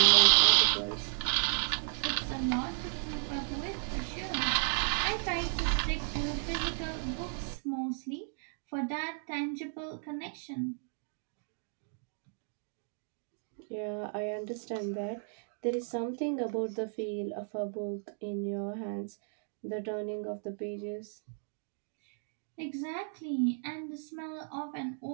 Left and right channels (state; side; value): silent; left; 55 dB below the other